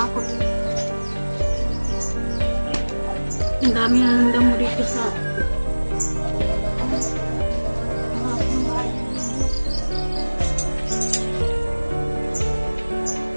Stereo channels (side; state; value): both; inverted; correlation -1.00